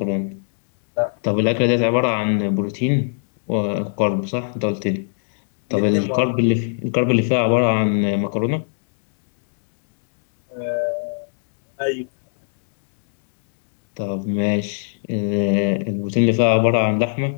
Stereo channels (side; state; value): right; silent; digital silence